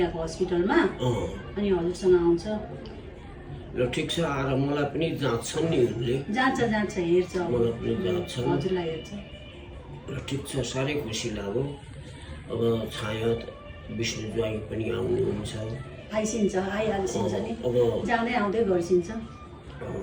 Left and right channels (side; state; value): both; identical; correlation 1.00